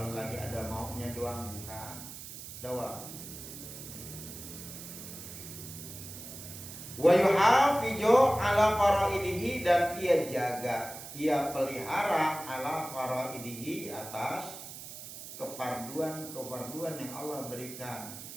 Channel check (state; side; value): noise; right; hiss, 12 dB below the sound